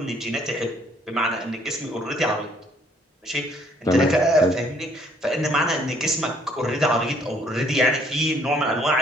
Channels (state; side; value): normal; both; correlation 0.64